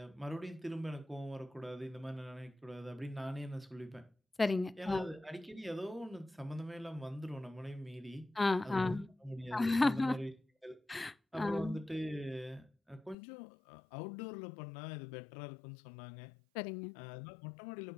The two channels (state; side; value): drops out; right; at 13.2 s